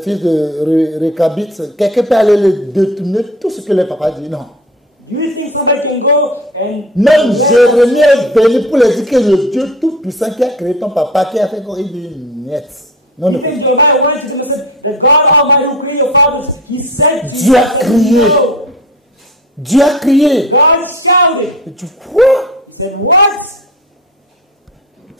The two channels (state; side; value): normal; both; correlation 0.35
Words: Récabites, quelqu'un peut aller les détourner tout ce que les papas disent? Non. Do you think somebody can go and... Même Jérémie est venu pour leur dire que le Dieu Tout-Puissant qui a créé ton papa, qui a fait quoi, il dit niet. Non, You non. think Jeremiah went to them and said, that God Almighty who created your fathers, He said to Dieu a crié. no. Dieu a crié. God shouted. Et tu crois? He said, what?